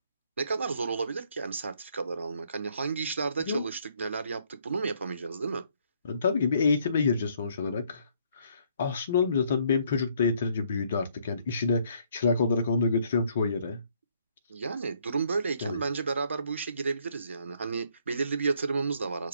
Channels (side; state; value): both; inverted; correlation -0.67